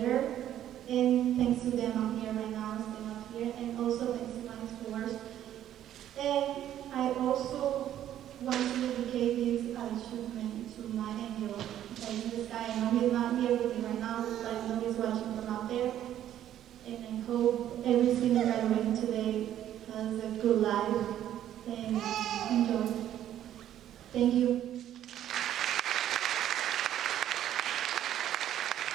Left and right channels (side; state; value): left; quieter; 11.5 dB